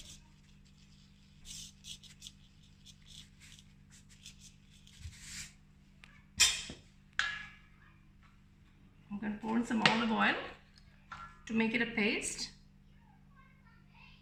I'm going to pour in some olive oil to make it a paste.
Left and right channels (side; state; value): both; identical; correlation 1.00